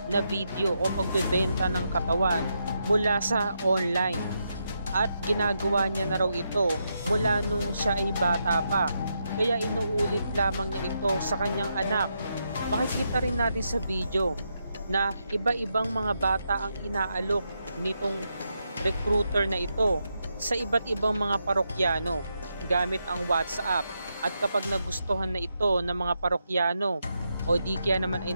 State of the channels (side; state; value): both; inverted; correlation -0.83